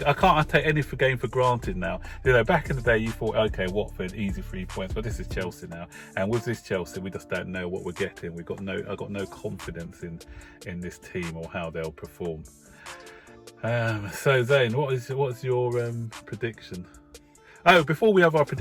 I can't take any game for granted now. You know, back in the day, you thought, okay, Watford, easy 3 points, but this is Chelsea now, and with this Chelsea, we just don't know what we're getting. I got no confidence in this team or how they'll perform. So Zane, what's your prediction? Oh, before we have our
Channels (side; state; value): both; identical; correlation 1.00